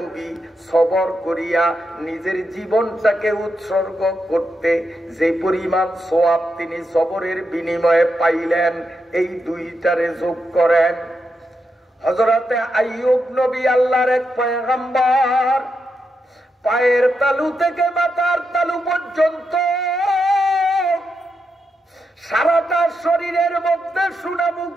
সবর করিয়া নিজের জীবনটাকে উৎসর্গ করতে যে পরিমাণ সওয়াব তিনি সবরের বিনিময়ে পাইলেন, এই 2টারে যোগ করেন। হযরতে আইয়ুব নবী আল্লাহর এক পয়গম্বর, পায়ের তালু থেকে মাথার তালু পর্যন্ত সারাটা শরীরের মধ্যে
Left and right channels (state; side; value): normal; both; correlation 0.84